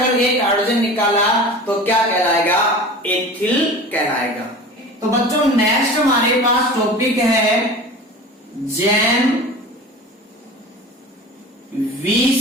एक हाइड्रोजन निकाला तो क्या कहलाएगा, एथिल कहलाएगा। तो बच्चों नेक्स्ट हमारे पास टॉपिक है जैम 20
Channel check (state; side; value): normal; both; correlation 0.36